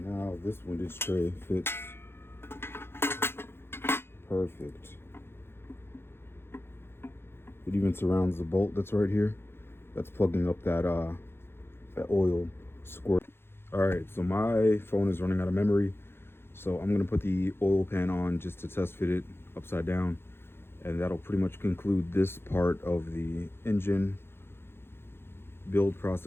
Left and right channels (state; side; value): late; right; 0.11 ms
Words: this windage tray fits perfect. It even surrounds the bolt that's right here. That's plugging up that oil squirt. Alright, so my phone is running out of memory. So I'm gonna put the oil pan on just to test fit it upside down. And that'll pretty much conclude this part of the engine build